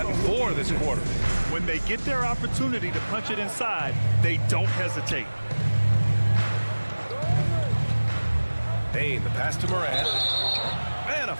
4 this quarter. When they get their opportunity to punch it inside, they don't hesitate. Bane, the pass to Morant. And a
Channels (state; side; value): inverted; both; correlation -1.00